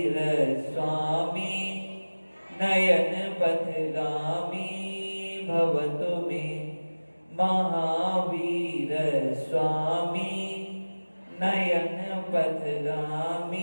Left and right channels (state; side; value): inverted; both; correlation -1.00